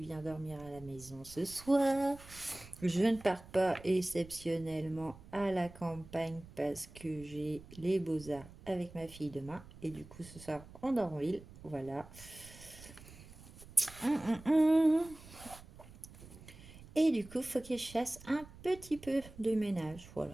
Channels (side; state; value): right; noise; rumble, 18 dB below the sound